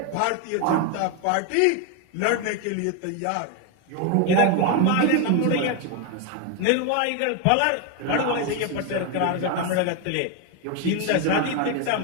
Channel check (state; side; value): different; both; correlation 0.01